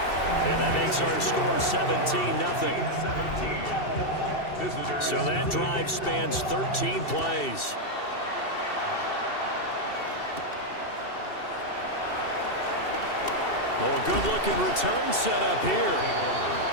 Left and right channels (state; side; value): late; right; 2.7 ms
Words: and that makes our score 17-0. So that drive spans 13 plays. Oh, a good-looking return set up here.